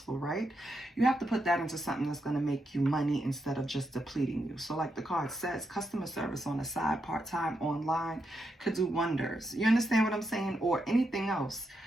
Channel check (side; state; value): both; normal; correlation 0.83